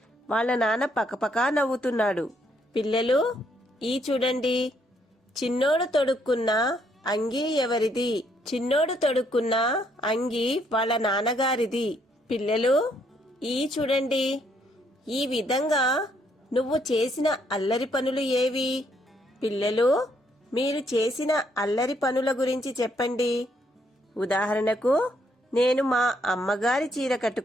వాళ్ళ నాన్న పకపకా నవ్వుతున్నాడు. పిల్లలు ఈ చూడండి. చిన్నోడు తొడుక్కున్న అంగి ఎవరిది? చిన్నోడు తొడుక్కున్న అంగి వాళ్ళ నాన్నగారిది. పిల్లలు ఈ చూడండి. ఈ విధంగా నువ్వు చేసిన అల్లరి పనులు ఏవి? పిల్లలు మీరు చేసిన అల్లరి పనుల గురించి చెప్పండి. ఉదాహరణకు, నేను మా అమ్మగారి చీర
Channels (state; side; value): normal; both; correlation 0.71